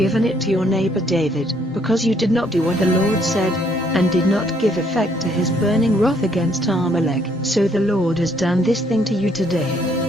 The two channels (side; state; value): both; normal; correlation 0.67